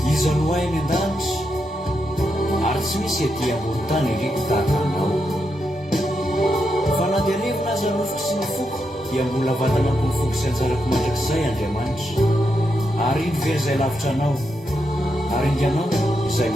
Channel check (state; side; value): normal; both; correlation 0.83